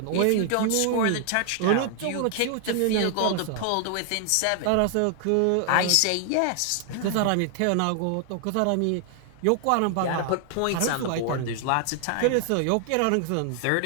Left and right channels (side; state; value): both; different; correlation 0.00